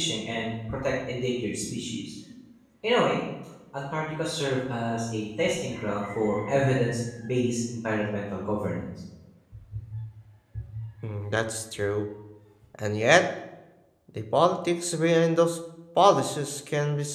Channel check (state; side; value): identical; both; correlation 1.00